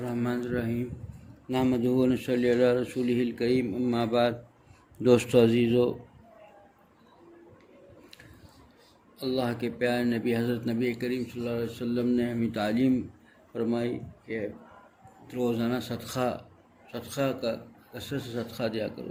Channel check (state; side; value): identical; both; correlation 1.00